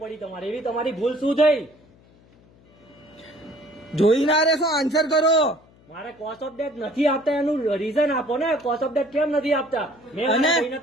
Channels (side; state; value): left; noise; hum, 28 dB below the sound